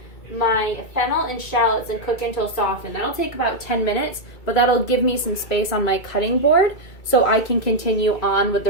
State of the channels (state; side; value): late; right; 2.3 ms